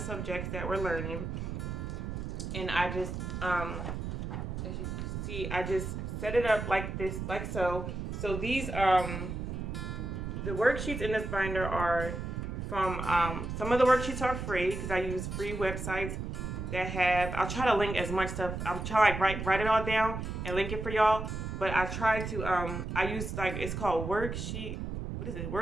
that we're learning, and I just, as you can see, I just set it up like this, like so. So these, the worksheets in this binder are from, some of the worksheets are free because I use free websites that have, I'll try to link as much stuff. I'm trying to write it all down and link it for y'all. But I try to, I use like, it's called worksheet, what is it?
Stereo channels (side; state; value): right; noise; rumble, 5 dB below the sound